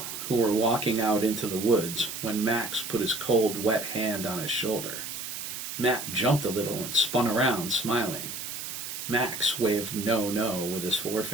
who were walking out into the woods, when Max put his cold, wet hand on his shoulder. Matt jumped a little and spun around, smiling. Max waved no with his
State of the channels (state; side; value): noise; right; hiss, 7 dB below the sound